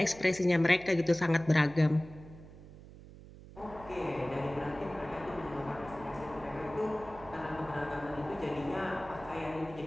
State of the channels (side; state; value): right; noise; hum, 18 dB below the sound